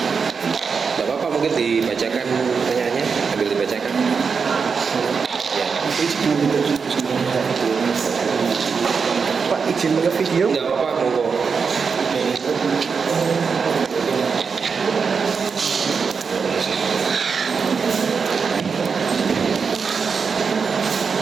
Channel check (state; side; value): quieter; left; 5.6 dB